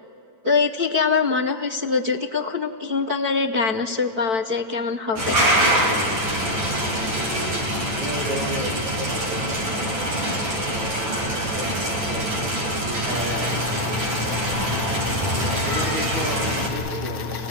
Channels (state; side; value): late; left; 9.0 ms